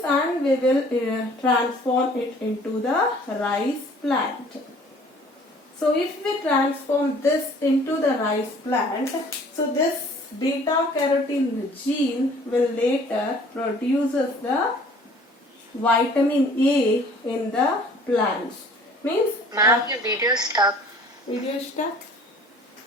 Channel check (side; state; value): both; normal; correlation 0.52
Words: and we will transform it into the rice plant. So if we transform this into the rice plant, so this beta carotene gene will later produces the vitamin A in the plants. Means Ma'am, your video is stuck. video stuck.